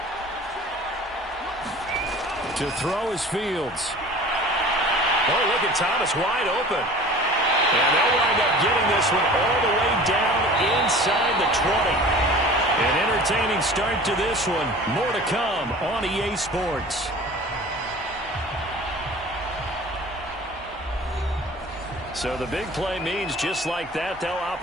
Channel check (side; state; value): both; normal; correlation 0.42